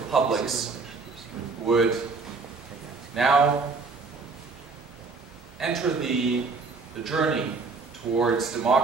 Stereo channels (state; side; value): quieter; left; 4.3 dB